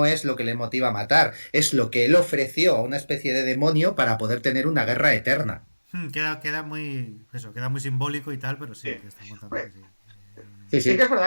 es lo que le motiva a matar, es lo que él ofreció a una especie de demonio para poder tener una guerra eterna. Queda muy. Eso, queda muy simbólico y tal, pero sí, Sí. que están contando que Hombre, sí. Sí, sí que sí. es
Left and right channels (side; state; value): both; inverted; correlation -1.00